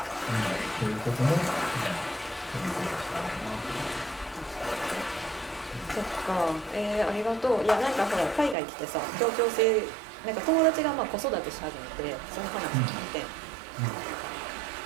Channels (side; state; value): left; drops out; at 8.6 s